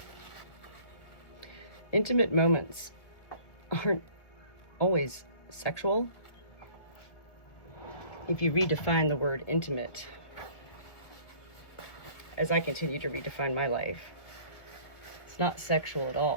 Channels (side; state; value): right; late; 1.7 ms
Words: Intimate moments aren't always sexual. If you redefine the word intimate, as I continue to redefine my life, it's not sexual at